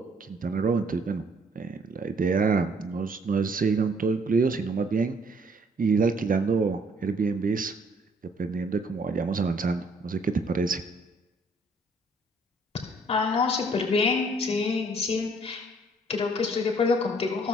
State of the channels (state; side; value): normal; both; correlation 0.62